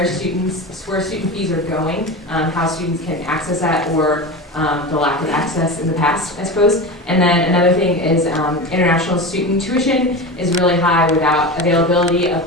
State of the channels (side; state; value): both; normal; correlation 0.26